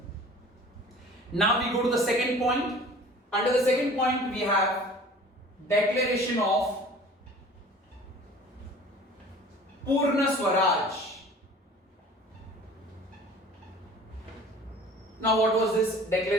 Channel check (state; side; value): normal; both; correlation 0.45